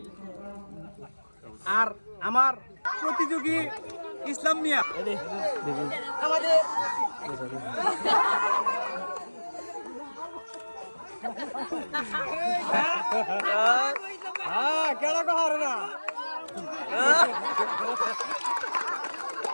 আর আমার প্রতিযোগী ইসলাম মিয়া আমাদের কেডা কো হারে না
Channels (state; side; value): inverted; both; correlation -1.00